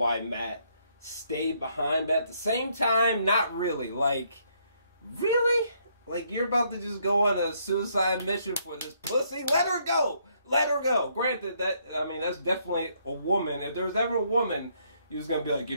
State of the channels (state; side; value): inverted; both; correlation -0.71